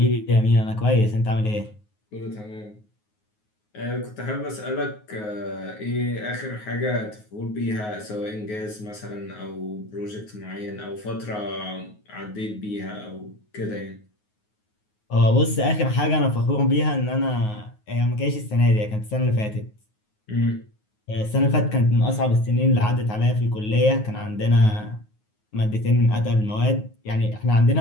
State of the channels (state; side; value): late; right; 9.5 ms